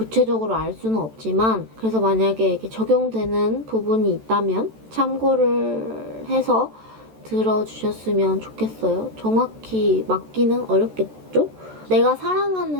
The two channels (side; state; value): left; late; 14 ms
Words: 알 수는 없지만 그래서 만약에 이렇게 적용되는 부분이 있다면 참고를 해서 들어주셨으면 좋겠어요. 정확히 맞기는 어렵겠죠? 내가